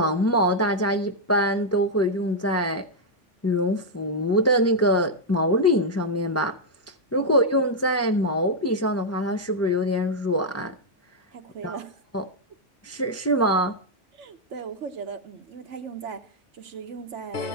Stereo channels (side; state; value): both; normal; correlation -0.03